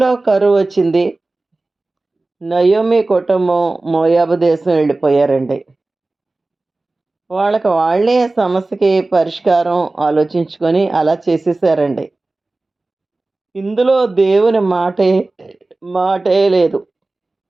కరువు వచ్చింది. నయోమి కుటుంబం మోయాబు దేశం వెళ్ళిపోయారండి. వాళ్ళకి వాళ్ళే సమస్యకి పరిష్కారం ఆలోచించుకొని అలా చేసేసారండి. ఇందులో దేవుని మాటే లేదు.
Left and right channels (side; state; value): left; quieter; 3.1 dB